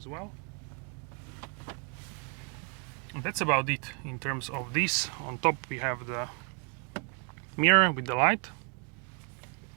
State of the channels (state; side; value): quieter; left; 38.3 dB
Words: well. And that's about it in terms of this. On top we have the mirror with the light,